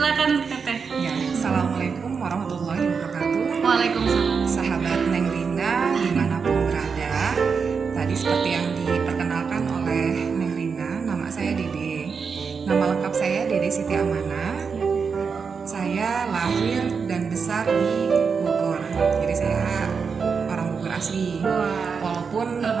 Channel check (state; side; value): quieter; left; 5.7 dB